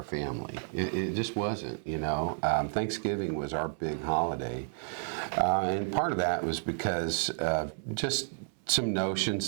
family. It just wasn't, you know. Thanksgiving was our big holiday. And part of that was because just some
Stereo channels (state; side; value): silent; left; 57 dB below the other